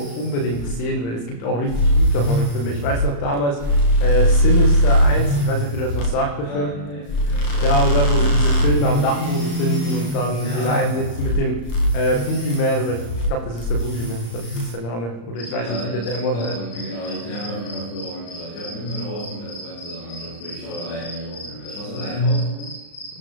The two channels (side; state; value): right; late; 35 ms